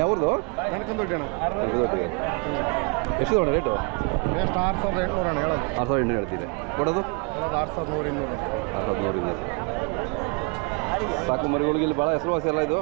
ಯಾವ್ದು ಎಷ್ಟು ತಗೊಂಡ ರೇಟು? ಎಷ್ಟು 6800 ಅಣ್ಣ ಹೇಳೋದು. 6800 ಹೇಳ್ತೀರಿ, ಕೊಡೋದು 6100. 6200. ಸಾಕು ಮರಿಗಳಿಗೆ ಇಲ್ಲಿ ಭಾಳ ಹೆಸರುವಾಸಿ ಎಲ್ಲ ಇದು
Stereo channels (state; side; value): quieter; left; 33.2 dB